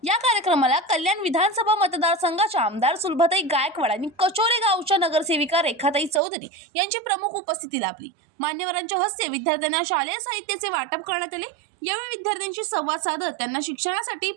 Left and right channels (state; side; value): drops out; left; at 6.2 s